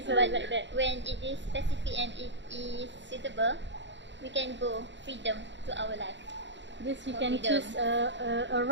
so, but like that. when it is specific and it is suitable, we can go freedom to our life. This you for can freedom. choose a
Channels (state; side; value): late; left; 0.53 ms